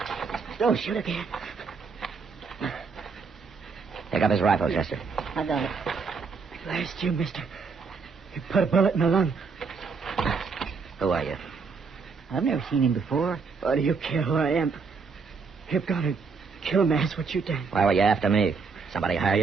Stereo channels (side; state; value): left; quieter; 5.1 dB